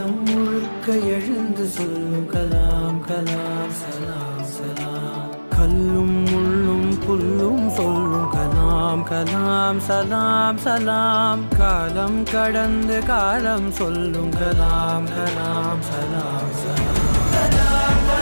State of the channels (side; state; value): both; inverted; correlation -1.00